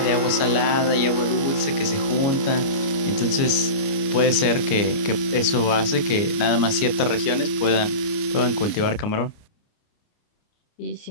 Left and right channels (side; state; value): right; late; 29 ms